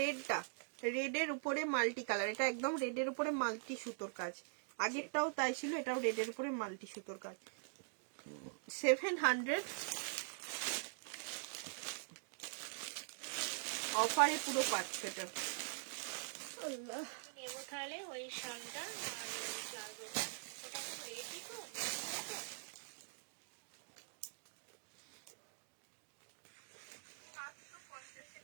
রেডটা, রেডের উপরে মাল্টি কালার, এটা একদম রেডের উপরে মাল্টি সুতোর কাজ। আগেরটাও তাই ছিল, এটাও রেডের উপরে মাল্টি সুতোর কাজ। 700 অফারে পুরো পাচ্ছ এটা। আল্লাহ, নেবো তাহলে ওই শালটা আর ওই প্লাজোটা, ওটা তো রেডি তো।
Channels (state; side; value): silent; left; digital silence